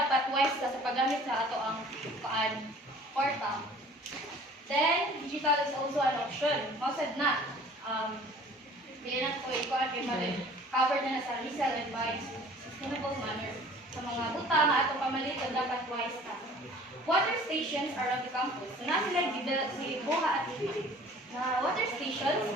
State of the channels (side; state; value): both; normal; correlation 0.49